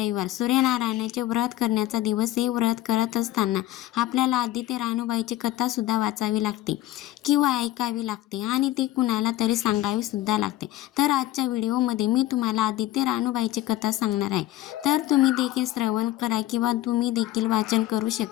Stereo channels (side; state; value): right; quieter; 15.1 dB